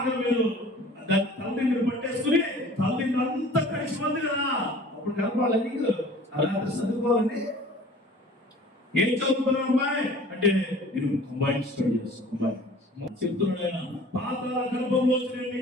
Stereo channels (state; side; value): normal; both; correlation 0.47